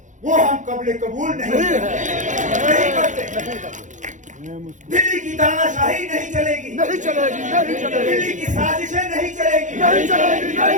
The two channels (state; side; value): late; left; 0.36 ms